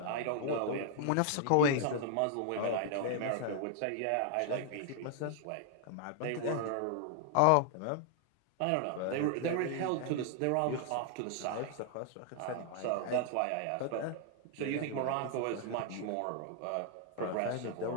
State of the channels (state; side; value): different; both; correlation 0.00